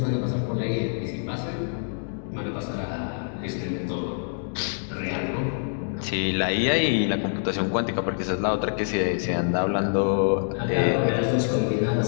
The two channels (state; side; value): silent; right; digital silence